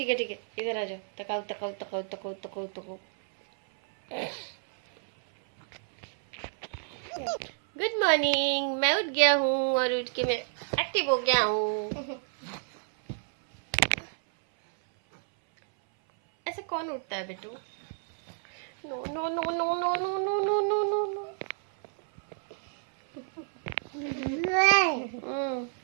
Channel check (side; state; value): left; silent; 58 dB below the other